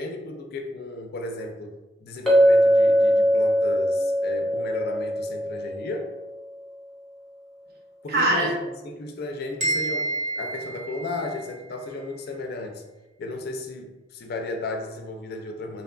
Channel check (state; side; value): normal; both; correlation 0.68